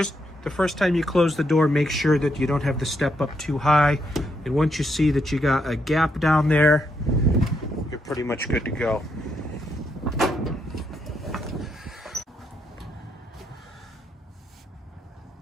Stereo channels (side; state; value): both; normal; correlation 0.78